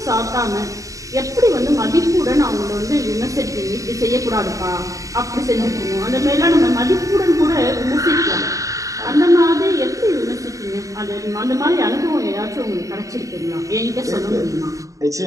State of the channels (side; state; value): left; late; 0.16 ms